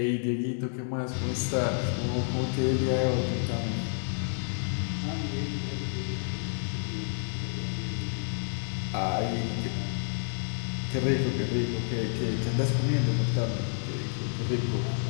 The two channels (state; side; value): silent; right; 58 dB below the other